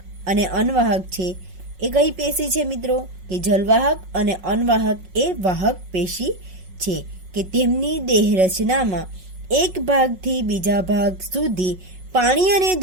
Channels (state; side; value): late; left; 5.4 ms